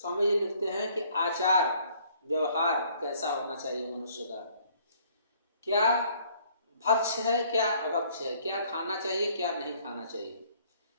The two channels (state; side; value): inverted; both; correlation -0.61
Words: जी लिखते हैं कि आचार व्यवहार कैसा होना चाहिए मनुष्य का, क्या भक्ष है क्या अभक्ष है, क्या खाना चाहिए क्या नहीं खाना चाहिए,